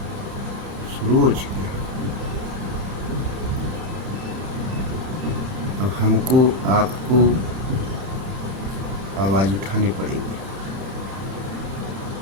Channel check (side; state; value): left; late; 30 ms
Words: शुरू हो चुकी हैं। अब हमको आपको आवाज़ उठानी पड़ेगी।